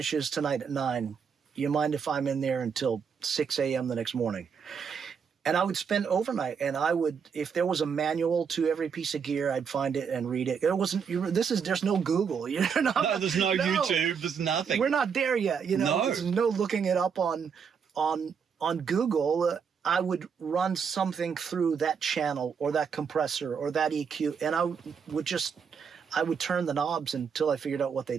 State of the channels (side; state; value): left; quieter; 6.6 dB